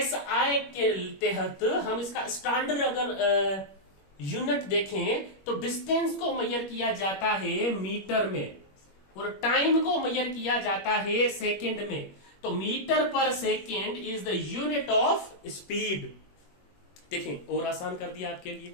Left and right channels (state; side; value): late; right; 21 ms